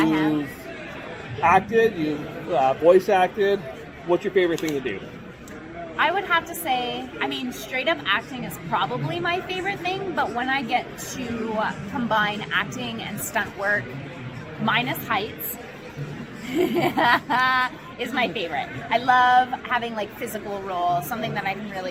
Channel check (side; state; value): both; identical; correlation 1.00